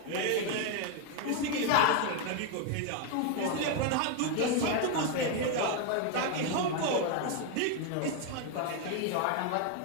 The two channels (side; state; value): both; different; correlation 0.01